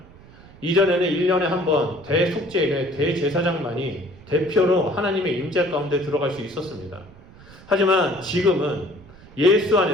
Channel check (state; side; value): noise; right; rumble, 22 dB below the sound